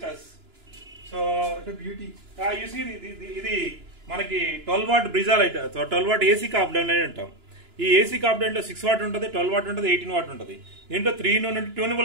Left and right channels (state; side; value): late; left; 2.9 ms